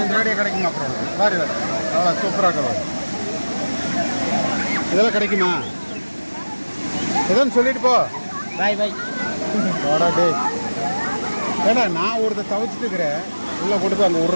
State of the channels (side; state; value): both; inverted; correlation -1.00